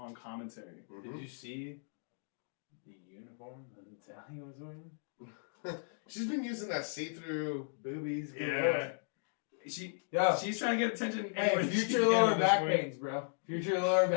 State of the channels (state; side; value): silent; right; digital silence